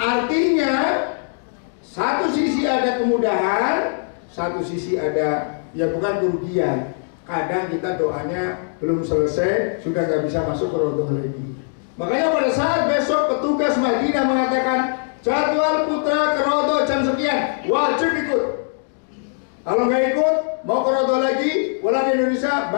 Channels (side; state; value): right; silent; digital silence